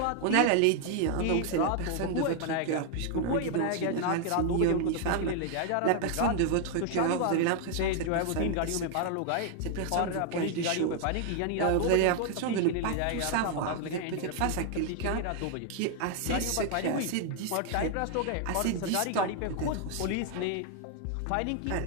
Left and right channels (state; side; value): different; both; correlation 0.00